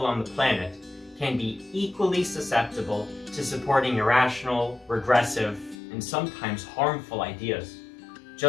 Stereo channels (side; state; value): right; drops out; at 5.8 s